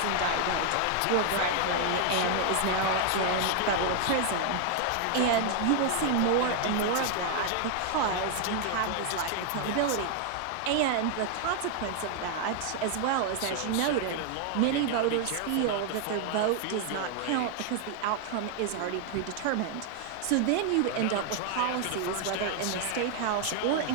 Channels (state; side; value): different; both; correlation 0.00